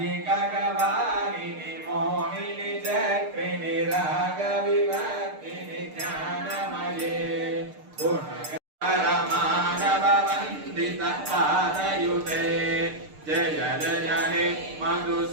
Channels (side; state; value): left; late; 6.6 ms